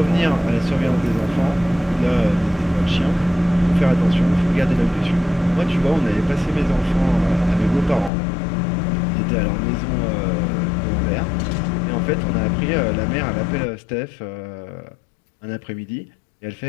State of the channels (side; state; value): right; drops out; at 8.1 s